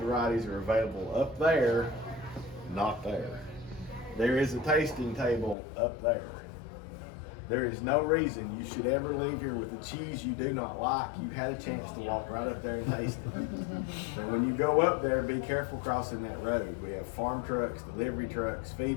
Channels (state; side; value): drops out; right; at 5.6 s